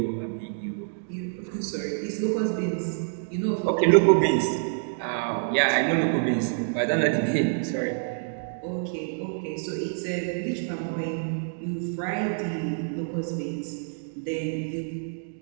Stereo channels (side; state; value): left; silent; digital silence